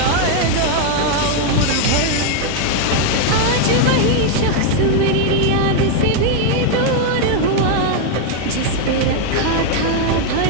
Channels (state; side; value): different; both; correlation 0.01